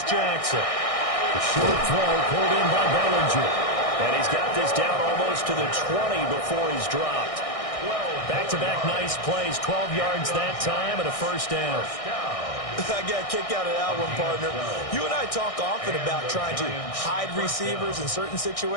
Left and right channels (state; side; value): late; right; 1.6 ms